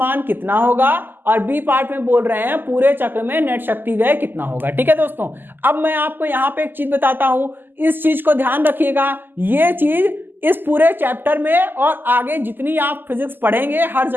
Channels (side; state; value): left; late; 0.092 ms